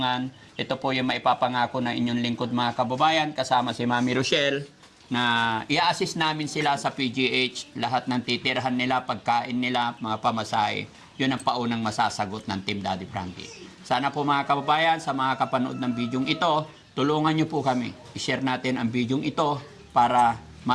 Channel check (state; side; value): identical; both; correlation 1.00